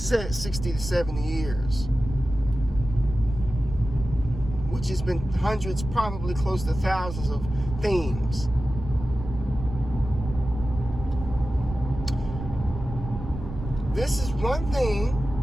to 70 years, which has been hundreds, probably close to thousands of themes. This is one thing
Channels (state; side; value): noise; right; rumble, 9 dB below the sound